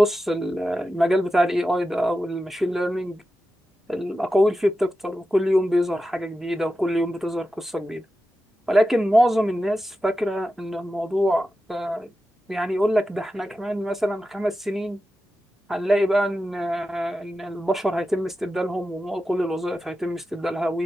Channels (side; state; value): both; normal; correlation 0.92